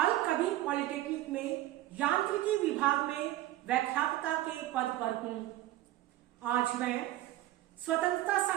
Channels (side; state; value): left; quieter; 15.1 dB